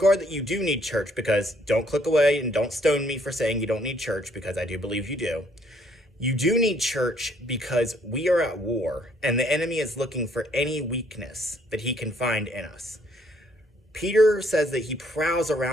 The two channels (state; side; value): normal; both; correlation 0.66